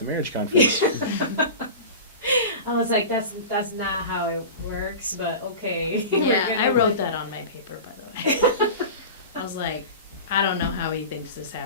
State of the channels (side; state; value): both; inverted; correlation -0.31